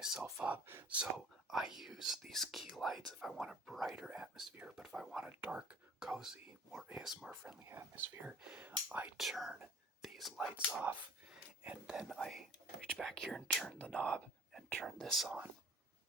up. So I use these key lights if I want a brighter atmosphere, but if I want a dark, cozy, more ASMR friendly atmosphere, I turn these lights off, and then I reach back here and turn the knob and turn this on.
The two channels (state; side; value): normal; both; correlation 0.48